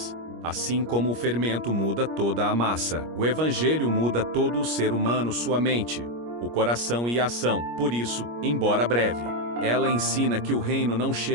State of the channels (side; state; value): left; late; 25 ms